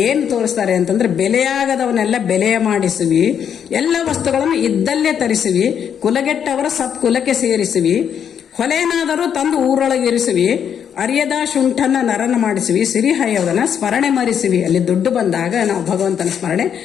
ಏನು ತೋರಿಸ್ತಾರೆ ಅಂತಂದ್ರೆ, ಬೆಲೆಯಾಗದವನ್ನೆಲ್ಲ ಬೆಲೆಯ ಮಾಡಿಸುವಿ, ಎಲ್ಲ ವಸ್ತುಗಳನ್ನು ಇದ್ದಲ್ಲೇ ತರಿಸುವಿ, ಕುಲಗೆಟ್ಟವರ ಸತ್ಕುಲಕ್ಕೆ ಸೇರಿಸುವಿ, ಹೊಲೆನಾದರೂ ತಂದು ಊರೊಳಗಿರಿಸುವಿ, ಅರಿಯದ ಶುಂಠನ ನರನ ಮಾಡಿಸುವಿ, ಸಿರಿಹಯವನ ಸ್ಮರಣೆ ಮರಿಸುವಿ. ಅಲ್ಲಿ ದುಡ್ಡು ಬಂದಾಗ ನಾವು ಭಗವಂತನ ಸ್ಮರಣೆ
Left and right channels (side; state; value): right; quieter; 8.3 dB